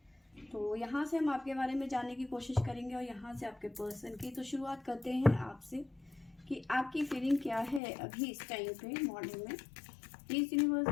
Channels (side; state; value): right; drops out; at 7.8 s